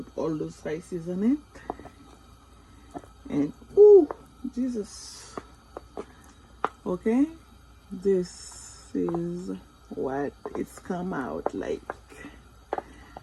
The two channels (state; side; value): identical; both; correlation 1.00